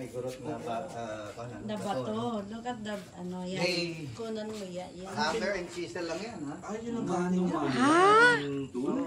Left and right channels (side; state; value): both; identical; correlation 1.00